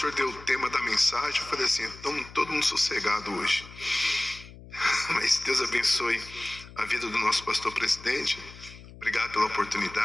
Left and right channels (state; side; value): noise; left; hum, 18 dB below the sound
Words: deu o tema da mensagem, eu falei assim, então todo mundo sossegado hoje. Mas Deus abençoe a vida do nosso pastor presidente. Obrigado pela